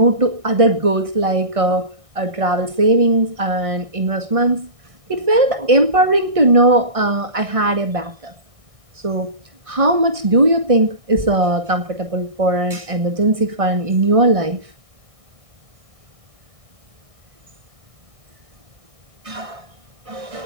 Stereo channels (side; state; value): left; late; 1.6 ms